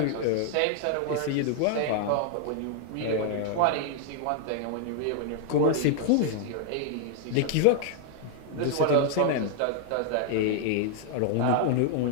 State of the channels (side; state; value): both; different; correlation 0.00